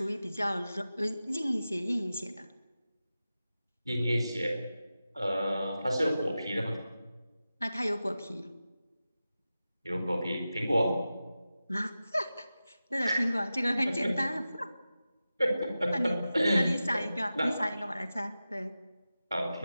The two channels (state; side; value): inverted; both; correlation -0.94